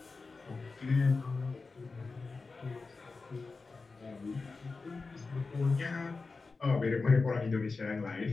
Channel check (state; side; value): quieter; right; 4.1 dB